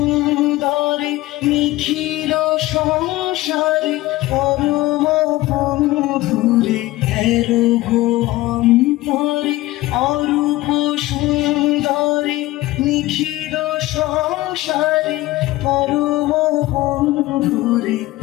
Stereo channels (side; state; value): right; quieter; 17.9 dB